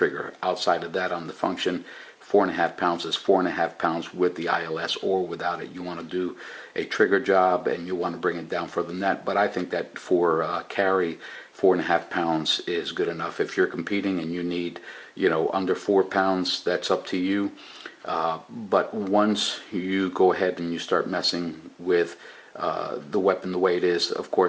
Outside of that, on the function, 4.5 pounds is 4.5 pounds with the ILS or without it. You want to do a trigger job and you want to bring it down for the net, but I think that for carry, 4.5 pounds is good enough. If you're competing and you need, you know, under 4 pounds, that's up to you. But once you go ahead and you start messing with the weapon the way it is, of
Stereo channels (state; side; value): identical; both; correlation 1.00